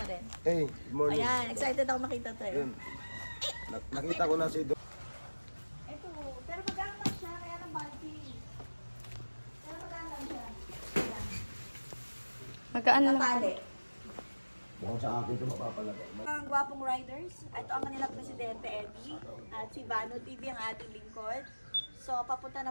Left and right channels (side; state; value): both; inverted; correlation -1.00